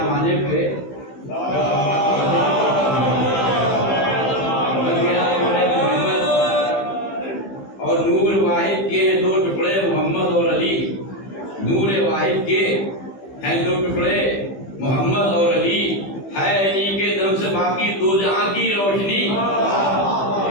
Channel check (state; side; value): late; right; 15 ms